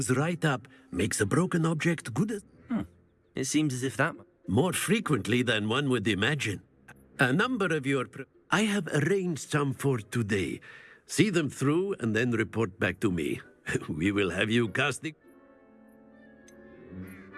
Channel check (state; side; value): identical; both; correlation 1.00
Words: right up, makes a broken object good as... It seems as if that... More frequently than one would imagine. A number of your... I have arranged some for today. See them through and then report back to me. We will have you casting...